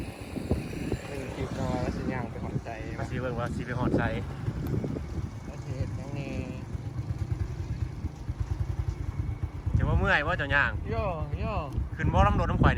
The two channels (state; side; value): identical; both; correlation 1.00